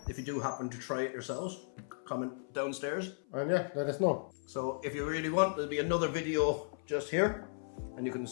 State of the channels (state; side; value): silent; right; 54 dB below the other